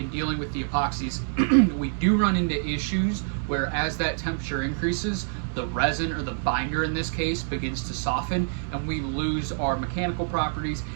dealing with the epoxies, we do run into issues where as that temperature increases, the resin, or the binder in this case, begins to soften, and we lose our mechanical properties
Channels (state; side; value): silent; left; 61 dB below the other